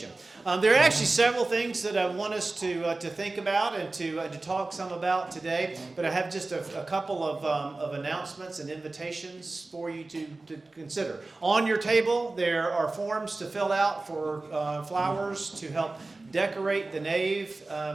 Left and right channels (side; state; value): left; quieter; 3.3 dB